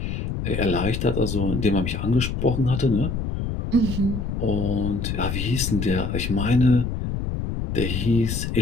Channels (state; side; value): noise; left; rumble, 3 dB below the sound